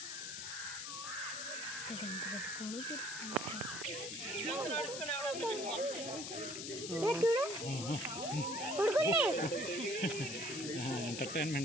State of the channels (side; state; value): left; noise; hiss, 6 dB below the sound